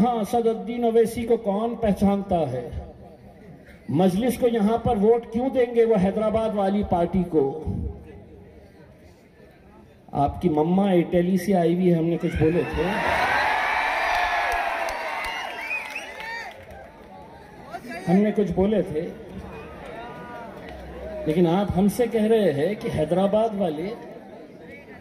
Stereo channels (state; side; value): identical; both; correlation 1.00